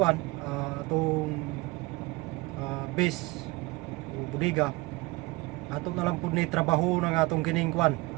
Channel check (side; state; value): left; quieter; 22.1 dB